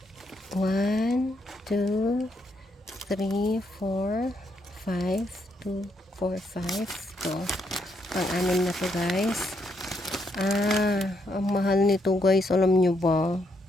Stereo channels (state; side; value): normal; both; correlation 0.76